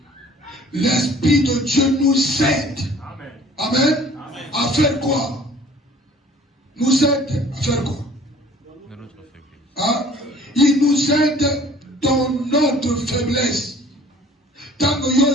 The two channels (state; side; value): normal; both; correlation 0.51